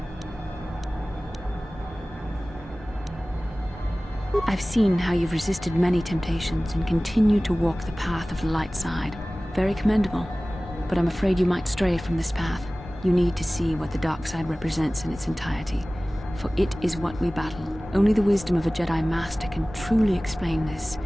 I've seen how you've resisted many temptations and continue to walk the path of the light side. Very commendable. But I'm afraid you might stray from this path. You need to see what the dark side represents in its entirety. For it is what we battle. Only the wisdom of a Jedi Master can truly explain this,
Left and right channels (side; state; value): both; normal; correlation 0.98